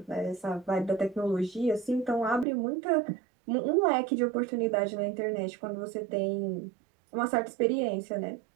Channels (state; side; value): drops out; left; at 2.5 s